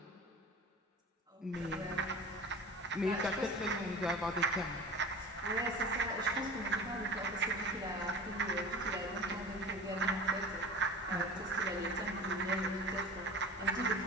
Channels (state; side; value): normal; both; correlation 0.37